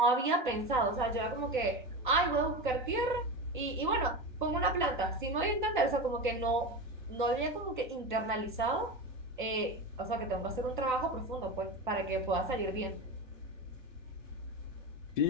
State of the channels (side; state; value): both; normal; correlation 0.23